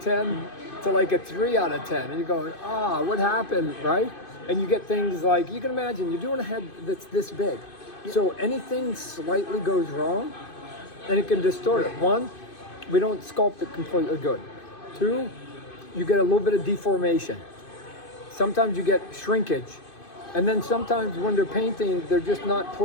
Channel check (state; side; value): late; right; 2.5 ms